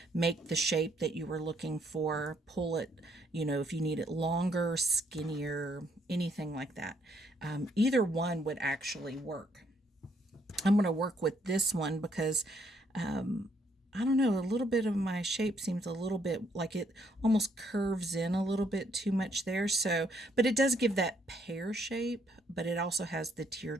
make the shape that you were looking for, pull it, you know, if you need it longer, skinnier, anything like that. Either one would actually work. I'm going to work with this one because I don't know, a little bit of my shape seems a little bit like it almost curves in a little bit too much there. So, but it does give that pear shape, but it also has the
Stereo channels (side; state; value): both; normal; correlation 0.70